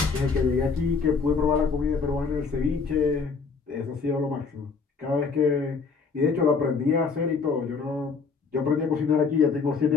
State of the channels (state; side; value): quieter; right; 5.0 dB